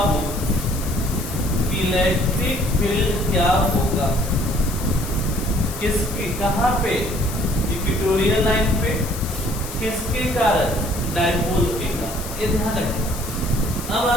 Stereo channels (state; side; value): noise; left; hiss, 11 dB below the sound